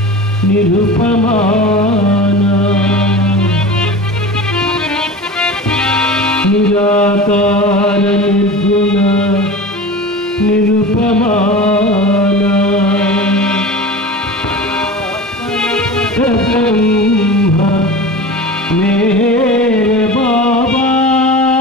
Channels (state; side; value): normal; both; correlation 0.33